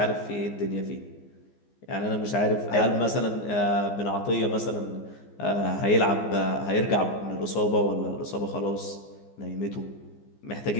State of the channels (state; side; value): late; right; 14 ms